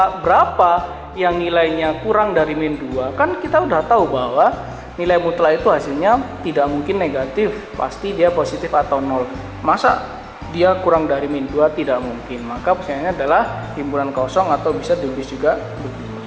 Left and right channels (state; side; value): identical; both; correlation 1.00